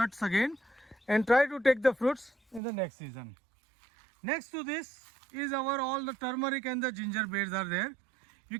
again and try to take the fruits in the next season. Next to this is our all the turmeric and the ginger beds are there. You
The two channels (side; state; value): left; drops out; at 2.6 s